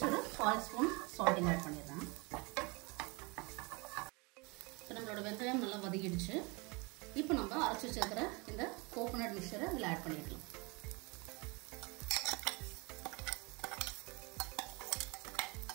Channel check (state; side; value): quieter; left; 28.0 dB